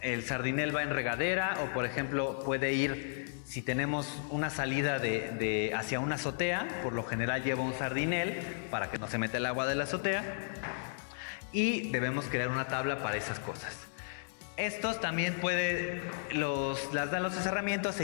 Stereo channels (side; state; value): right; silent; digital silence